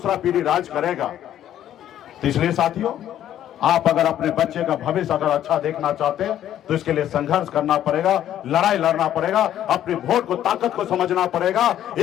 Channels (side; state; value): right; quieter; 11.4 dB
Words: पीढ़ी राज करेगा। तो इसलिए साथियों, आप अगर अपने बच्चे का भविष्य अगर अच्छा देखना चाहते हैं तो इसके लिए संघर्ष करना पड़ेगा, लड़ाई लड़ना पड़ेगा, अपने वोट को ताकत को समझना पड़ेगा,